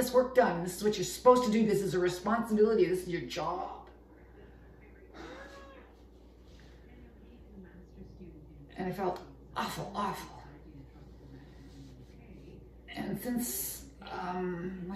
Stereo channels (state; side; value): identical; both; correlation 1.00